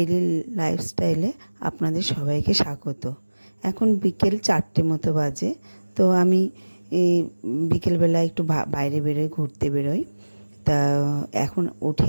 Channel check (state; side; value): inverted; both; correlation -1.00